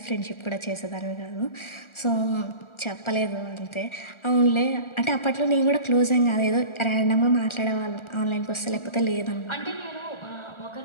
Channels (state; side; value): late; right; 1.4 ms